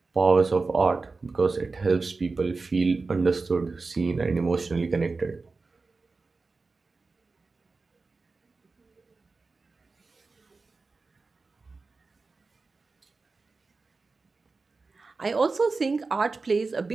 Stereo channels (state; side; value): quieter; left; 4.0 dB